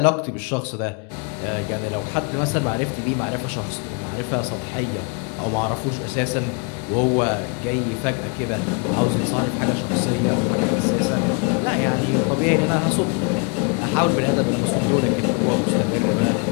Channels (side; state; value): right; quieter; 34.7 dB